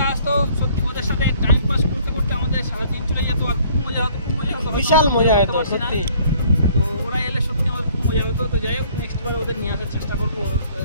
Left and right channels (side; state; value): both; inverted; correlation -0.58